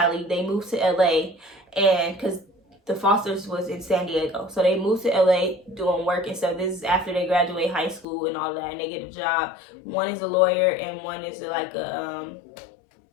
They moved to LA, and because The Fosters was in San Diego, so they moved to LA doing work and stuff. This is after they graduate high school and all that, and they get a job. One is a lawyer, and one is like a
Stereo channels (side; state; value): right; drops out; at 8.1 s